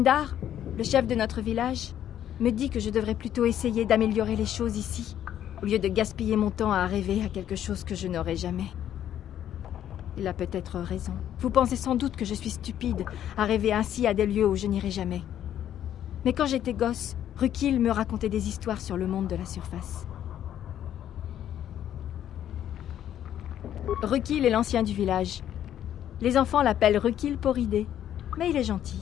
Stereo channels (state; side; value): quieter; right; 10.8 dB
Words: le chef de notre village, me dit que je devrais plutôt essayer d'améliorer les choses ici. au lieu de gaspiller mon temps à rêver à quelque chose que je n'aurai jamais. Il a peut-être raison. Vous pensez sans doute que je suis stupide à rêver ainsi à des lieux où je n'irai jamais. Mais quand j'étais gosse, Rukil me racontait des histoires sur le monde de la surface. Rukil est l'ancien du village. Les enfants l'appellent Rukil Poridé, mais il est